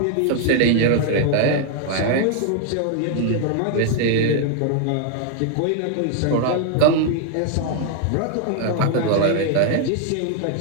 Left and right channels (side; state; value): both; different; correlation 0.00